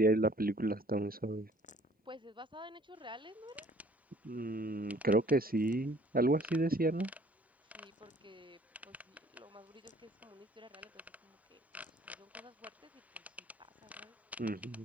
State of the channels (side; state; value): both; normal; correlation 0.55